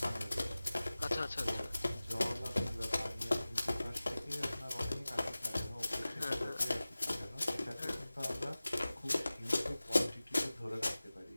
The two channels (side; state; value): both; inverted; correlation -0.98